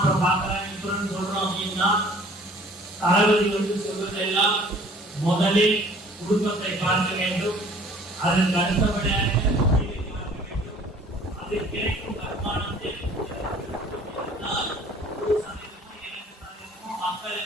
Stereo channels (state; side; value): normal; both; correlation 0.52